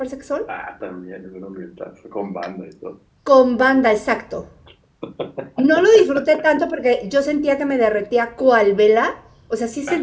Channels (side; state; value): both; identical; correlation 1.00